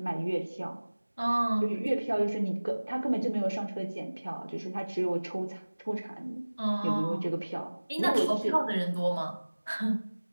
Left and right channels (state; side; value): inverted; both; correlation -1.00